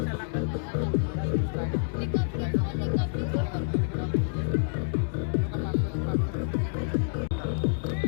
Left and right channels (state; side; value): silent; right; 59 dB below the other